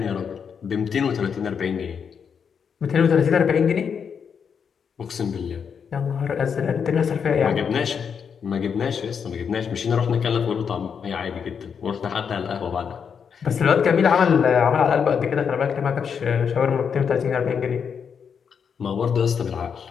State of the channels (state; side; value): quieter; right; 6.8 dB